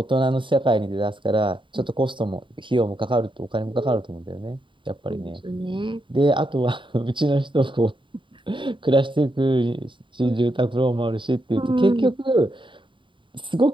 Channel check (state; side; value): late; left; 0.24 ms